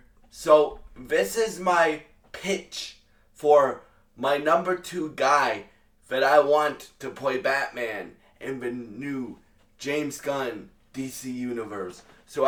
So, this is my pitch for my number two guy that I want to play Batman in the new James Gunn DC Universe. So,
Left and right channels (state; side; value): identical; both; correlation 1.00